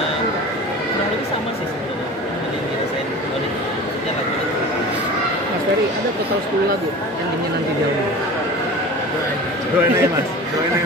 lebih sama sih sebenarnya yang dirasain oleh maksudnya lagu itu. Mas Ferry, ada total 10 lagu yang ingin nanti jauh. Doain aja mas.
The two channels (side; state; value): both; normal; correlation 0.37